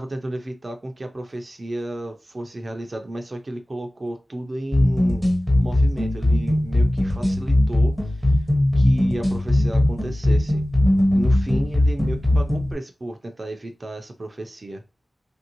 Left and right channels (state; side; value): normal; both; correlation 0.96